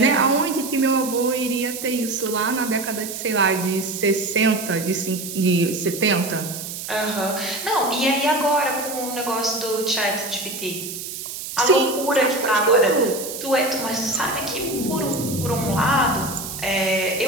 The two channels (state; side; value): noise; right; hiss, 8 dB below the sound